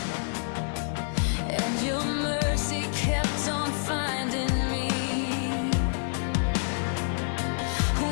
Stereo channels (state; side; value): silent; right; 60 dB below the other